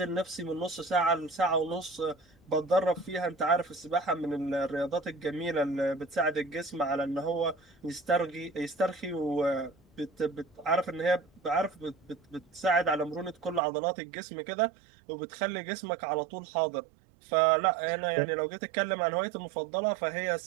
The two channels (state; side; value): drops out; left; at 13.6 s